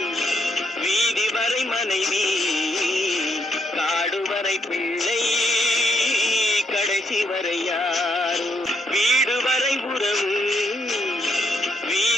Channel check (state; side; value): normal; both; correlation 0.75